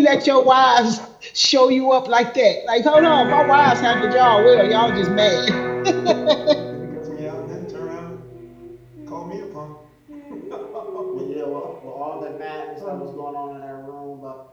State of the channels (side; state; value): both; identical; correlation 1.00